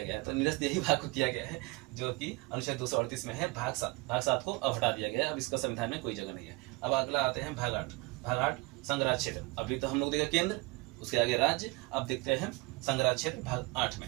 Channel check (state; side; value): quieter; left; 24.2 dB